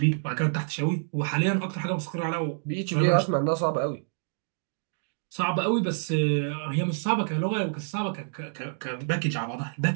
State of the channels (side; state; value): left; silent; digital silence